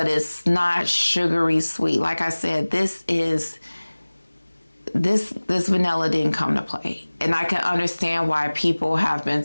it's not sugary sweet. Like I said, this vanilla didn't come to play. And I can understand why people have been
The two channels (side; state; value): both; inverted; correlation -1.00